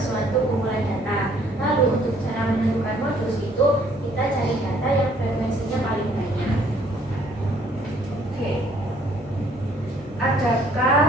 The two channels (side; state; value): both; normal; correlation 0.62